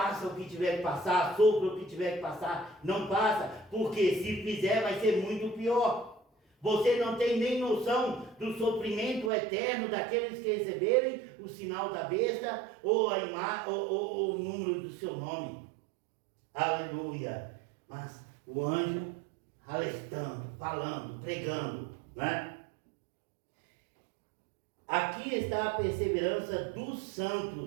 o que tiver que passar, sopra o que tiver que passar, não passa, porque se fizer vai ser muito pior. Você não tem nem noção do sofrimento eterno daqueles que receberem o sinal da besta ou o número do seu nome. Aleluia. Mas o anjo alertando, falando, pregando, né? Aqui está a perseverança dos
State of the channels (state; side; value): drops out; left; at 9.3 s